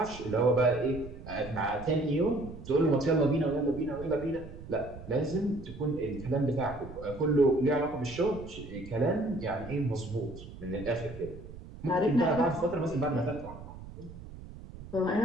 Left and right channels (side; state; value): right; noise; rumble, 14 dB below the sound